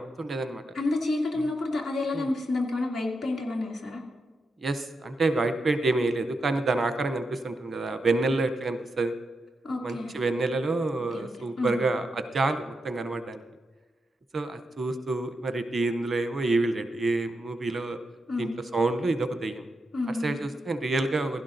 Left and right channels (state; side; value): normal; both; correlation 0.85